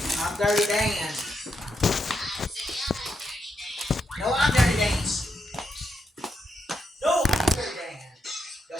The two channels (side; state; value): both; normal; correlation 0.82